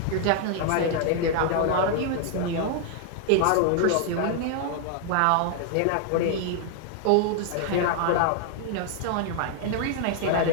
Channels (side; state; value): both; different; correlation 0.00